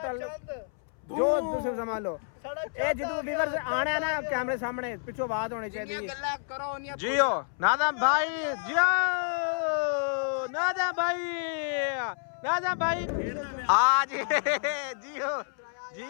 ਜੋ ਤੁਸੀਂ ਸਮਝ ਲਓ ਇਹ ਜਦੋਂ ਵੀਵਰਸ ਆਣਾ ਨਾ ਕੈਮਰੇ ਸਾਹਮਣੇ ਪਿੱਛੋਂ ਆਵਾਜ਼ ਹੋਣੀ ਚਾਹੀਦੀ ਹੈ ਗੱਲਾਂ ਕਰੋ ਜੀਓ ਨਾਦਮ ਭਾਈ ਜੀਓ ਨਾਦਮ ਭਾਈ ਆ ਜੀ ਜੀਓ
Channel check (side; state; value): right; silent; 59 dB below the other